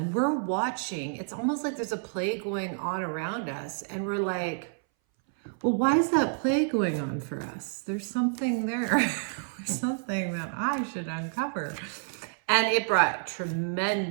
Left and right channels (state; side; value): silent; left; 59 dB below the other